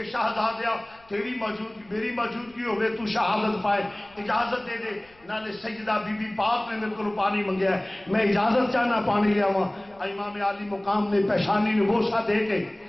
شہزادیا تیری موجودگی میری موجودگی ہوئے تو شہادت پائے, اجازت دے دے. نالے سیدہ بی بی پاک نے میرے کو پانی منگیا ہے, میں اجازت چاہنا پانی لیا ہوا. امام عالی مقام نے پیشانی نے بوسا دے کے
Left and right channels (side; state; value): left; noise; rumble, 29 dB below the sound